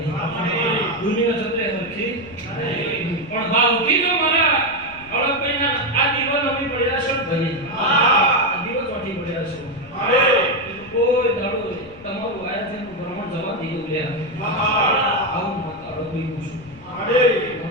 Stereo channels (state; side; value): noise; left; rumble, 22 dB below the sound